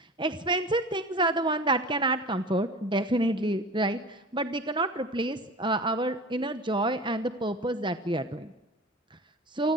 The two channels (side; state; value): both; normal; correlation 0.36